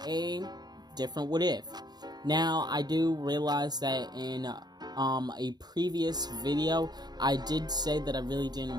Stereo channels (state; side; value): late; left; 0.20 ms